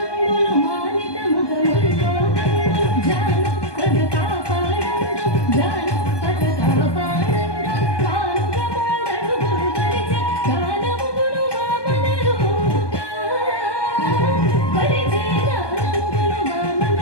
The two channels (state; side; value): late; right; 1.2 ms